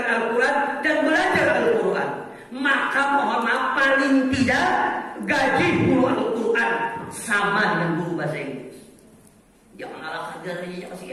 Al-Quran dan belajar Al-Quran. Maka mohon maaf, paling tidak gaji guru Al-Quran sama dengan guru bahasa Inggris. Jangan ala kadarnya,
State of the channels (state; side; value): identical; both; correlation 1.00